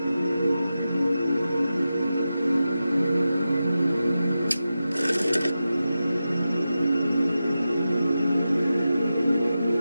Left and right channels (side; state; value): both; inverted; correlation -0.92